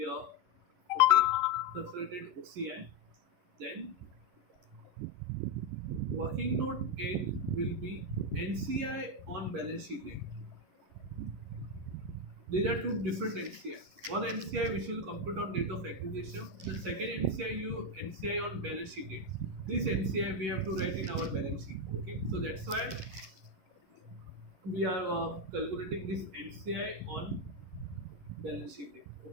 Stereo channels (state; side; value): late; left; 11 ms